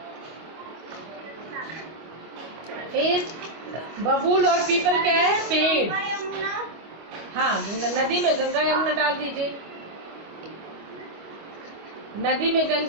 फिर बबूल और पीपल क्या है? पेड़। हाँ, नदी में गंगा यमुना डाल दीजिए। नदी में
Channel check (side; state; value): left; late; 25 ms